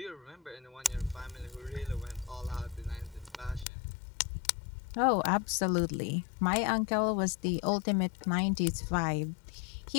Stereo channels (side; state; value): right; drops out; at 3.7 s